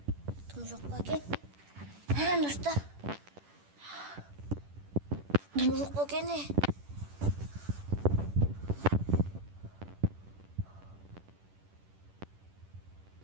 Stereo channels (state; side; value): late; left; 10 ms